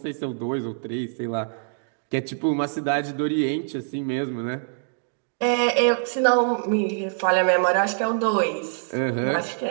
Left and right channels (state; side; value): silent; left; digital silence